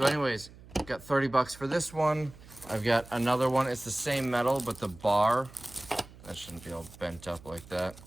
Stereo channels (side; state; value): right; noise; hum, 20 dB below the sound